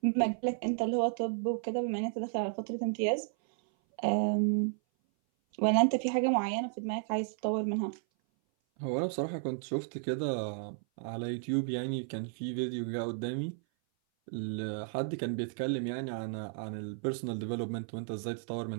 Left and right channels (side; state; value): left; silent; 56 dB below the other